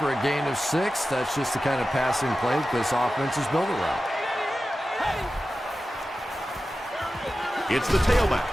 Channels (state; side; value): normal; both; correlation 0.94